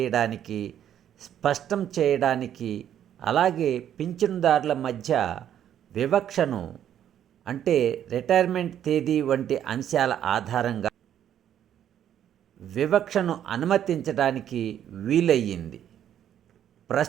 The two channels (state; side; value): quieter; left; 10.2 dB